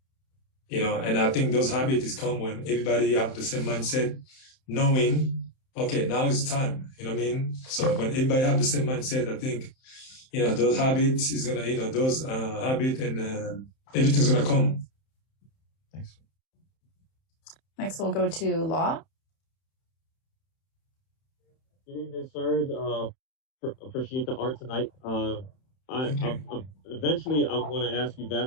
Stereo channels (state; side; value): late; right; 31 ms